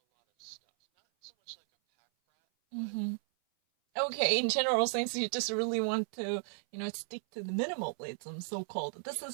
Mhm. Okay, in general sense, you just really want to, stick to the minimalism, so-called. This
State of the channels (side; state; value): left; silent; 55 dB below the other